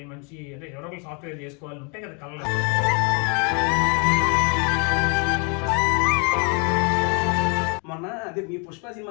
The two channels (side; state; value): right; quieter; 34.8 dB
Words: మంచి అంటే ఎవరో ఒకరు సాఫ్ట్వేర్ చేసుకోవాలి ఉంటాయి కదా కళ్ళ. మొన్న అదే మీ పుష్ప